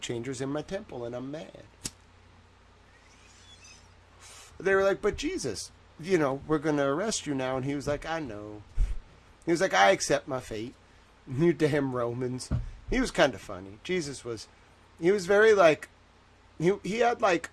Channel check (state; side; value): identical; both; correlation 1.00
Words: in my temple, and I'm mad. They were like, but Jesus, we're going to arrest you now. And he was like, I know. He was like, I accept my fate. You damn Romans. He was kind of funny. Jesus was, he was very, like, he had, like,